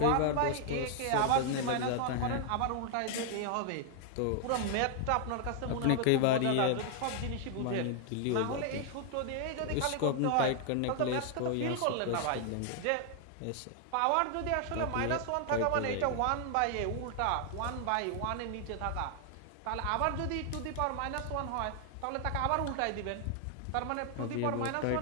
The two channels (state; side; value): different; both; correlation 0.00